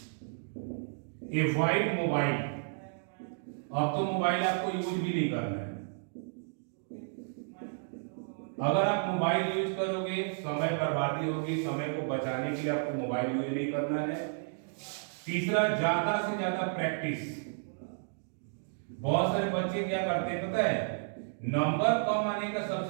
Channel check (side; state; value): left; silent; digital silence